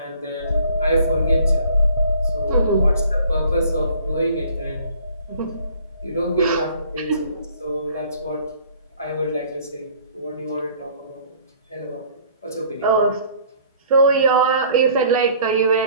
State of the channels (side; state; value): both; inverted; correlation -0.54